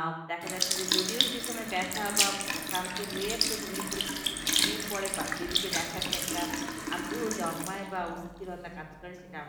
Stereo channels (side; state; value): both; identical; correlation 1.00